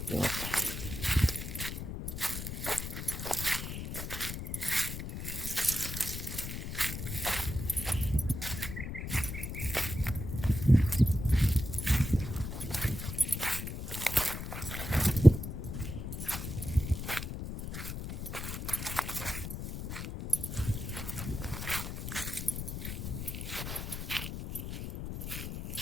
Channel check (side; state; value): left; noise; rumble, 6 dB below the sound